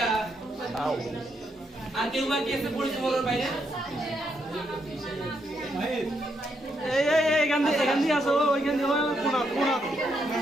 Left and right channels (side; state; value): both; normal; correlation 0.78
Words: আর কেউ বাকি আছে পরিচয় বলার বাইরে এখান দিয়ে আসো ওইখান দিয়ে